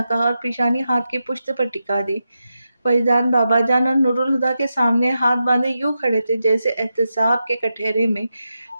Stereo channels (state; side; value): inverted; both; correlation -0.88